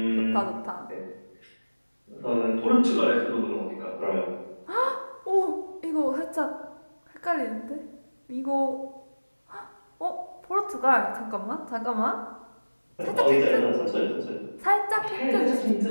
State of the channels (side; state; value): both; inverted; correlation -1.00